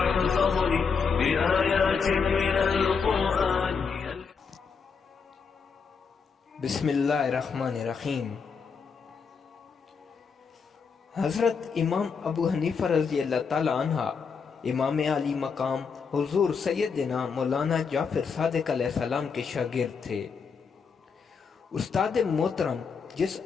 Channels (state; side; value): quieter; right; 5.7 dB